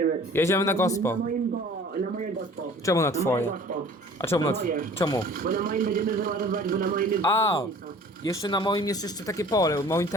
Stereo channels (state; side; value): normal; both; correlation 0.48